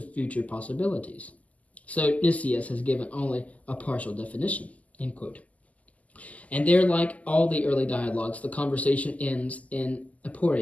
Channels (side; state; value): right; late; 0.073 ms